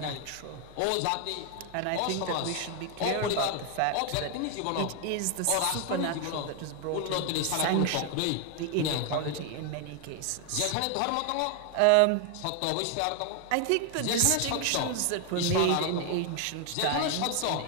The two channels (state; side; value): different; both; correlation 0.00